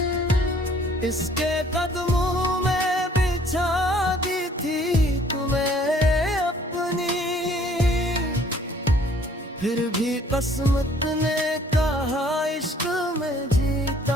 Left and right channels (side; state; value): both; normal; correlation 0.58